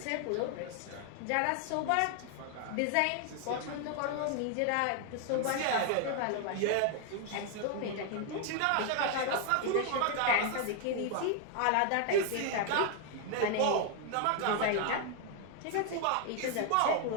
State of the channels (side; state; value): both; different; correlation 0.00